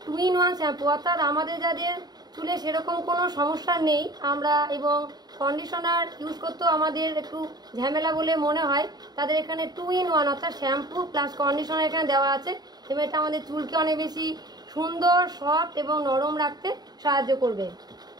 2-in-1 শ্যাম্পু, অর্থাৎ আমাদের যাদের চুলে সেরকম কোনো সমস্যা নেই আমরা এবং কন্ডিশনার ইউজ করতেও আমাদের একটু ঝামেলা বলে মনে হয়, তাদের এখানে 2-in-1 অর্থাৎ শ্যাম্পু প্লাস কন্ডিশনার এখানে দেওয়া আছে। এবং এটা আমাদের চুলকে অনেক বেশি সুন্দর, সফট এবং নরম রাখতে সাহায্য করবে।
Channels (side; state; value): left; late; 0.20 ms